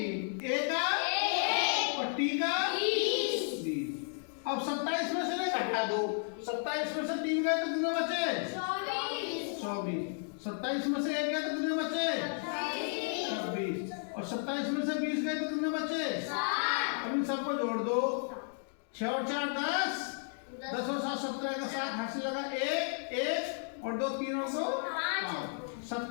A का और T का 20। अब 27 में से नहीं घटा दो। 27 में से 3 गए तो कितने बचे? 24। 27 में से 1 गए तो कितने बचे? 26। और 27 में से 20 गए तो कितने बचे? 7। अब इन सबको जोड़ दो। 6 और 4 10, 10 और 7 17 का 7 हाथ से लगा 1 1 और 2 3 और 2 5।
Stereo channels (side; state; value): right; silent; 55 dB below the other